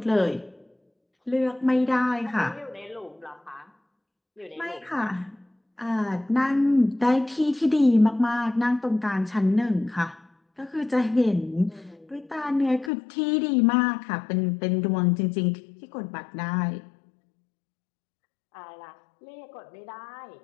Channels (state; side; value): drops out; right; at 12.9 s